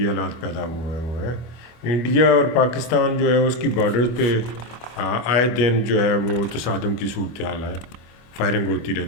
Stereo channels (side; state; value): right; late; 25 ms